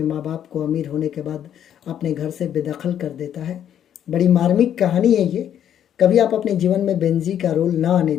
माँ बाप को अमीर होने के बाद अपने घर से बेदखल कर देता है। बड़ी मार्मिक कहानी है ये। कभी आप अपने जीवन में बेंजी का रोल ना आने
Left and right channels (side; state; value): right; quieter; 9.9 dB